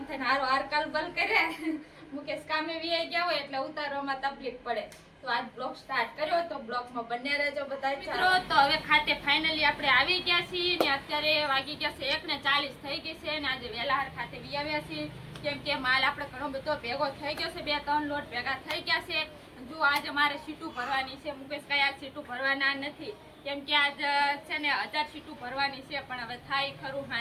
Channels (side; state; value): both; identical; correlation 1.00